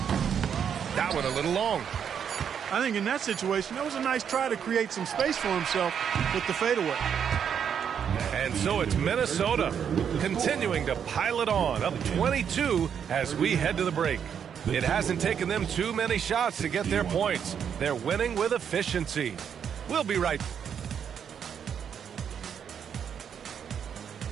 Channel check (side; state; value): left; quieter; 7.9 dB